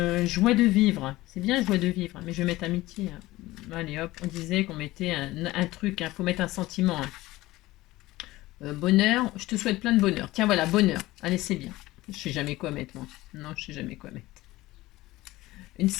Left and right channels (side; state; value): right; quieter; 18.1 dB